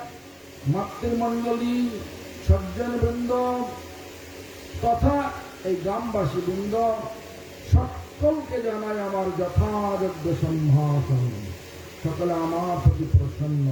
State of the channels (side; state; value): both; identical; correlation 1.00